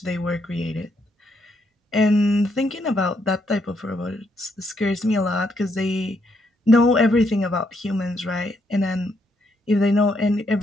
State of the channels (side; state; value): both; normal; correlation 0.75